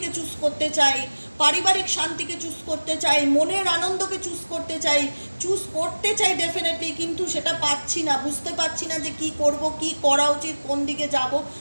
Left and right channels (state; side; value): inverted; both; correlation -1.00